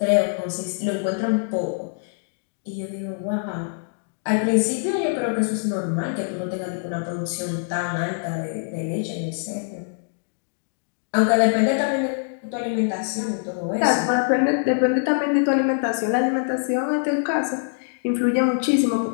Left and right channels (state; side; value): silent; right; digital silence